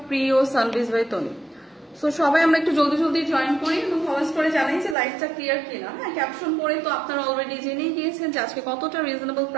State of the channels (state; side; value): drops out; left; at 5.0 s